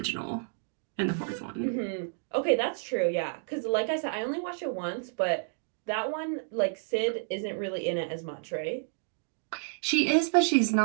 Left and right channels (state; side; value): silent; left; digital silence